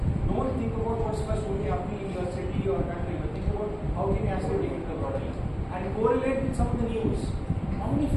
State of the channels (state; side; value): identical; both; correlation 1.00